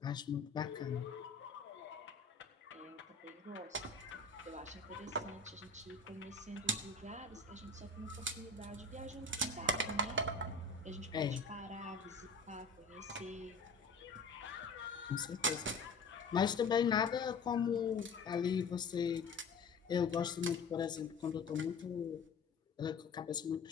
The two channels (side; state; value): right; quieter; 4.1 dB